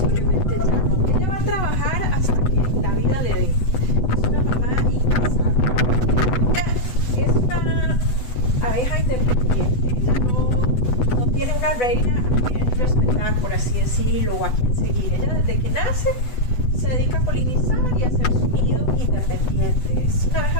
ya no. Ella va a trabajar hasta que la vida le dé. Es una mamá incansable. Ella es una abeja independiente. Ella no tiene una reina a quien respetar, por así decirlo, o a quien seguir. Ella desde que nace se dedica a polinizar y a hacer su nido independiente. Es una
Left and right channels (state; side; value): late; right; 8.0 ms